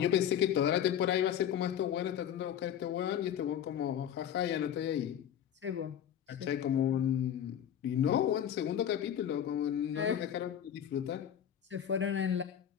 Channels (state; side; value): quieter; right; 9.7 dB